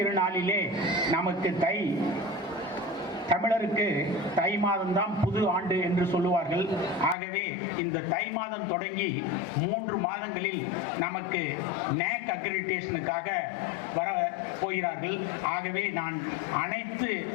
நமக்கு தமிழருக்கு தை மாதம்தான் புது ஆண்டு என்று சொல்லுவார்கள். ஆகவே இந்த தை மாதம் தொடங்கி 3 மாதங்களில் நமக்கு NAAC அக்ரிடிடேஷனுக்காக வர போகிறார்கள். ஆகவே நான் அனைத்து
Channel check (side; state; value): right; drops out; at 7.2 s